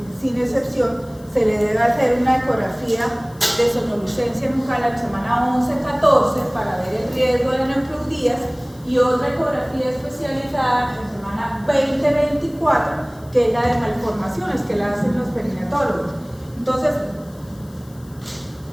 sin excepción, se le debe hacer una ecografía de sonolucencia nucal a la semana 11-14 para ver el riesgo de neumocludías, y otra ecografía especializada en semana 20-24, que es la de malformaciones, que la hacen los perinatólogos. Entonces,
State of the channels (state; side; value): noise; left; hiss, 26 dB below the sound